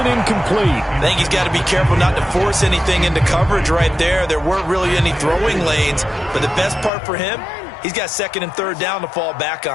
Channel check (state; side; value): drops out; right; at 6.9 s